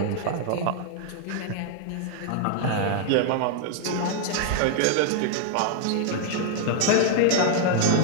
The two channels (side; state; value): both; different; correlation 0.00